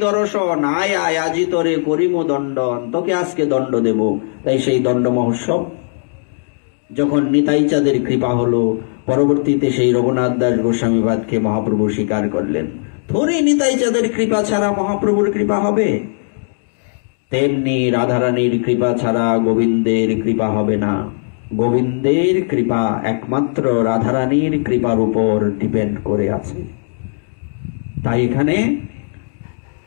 দর্শন, আয় আয় আজি তোরে করিম দণ্ডন, তোকে আজকে দণ্ড দেব। তাই সেই দণ্ড মহোৎসব। যখন নিতাই চাঁদের কৃপা হলো, পরবর্তীতে সেই রঘুনাথ দাস গোস্বামীপাদকে মহাপ্রভু স্বীকার করলেন। থোড়ি নিতাই চাঁদের কৃপা ছাড়া মহাপ্রভুর কৃপা হবে? তেমনি রাধারানীর কৃপা ছাড়া গোবিন্দের কৃপা হবে না। গোবিন্দের কৃপা একমাত্র রাধারানীর কৃপার উপর ডিপেন্ড করে আছে। তাই এখানে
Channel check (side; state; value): right; silent; digital silence